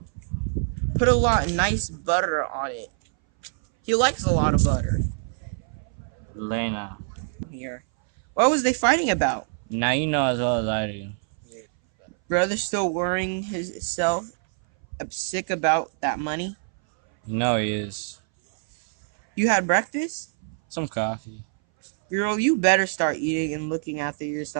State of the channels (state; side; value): silent; left; 60 dB below the other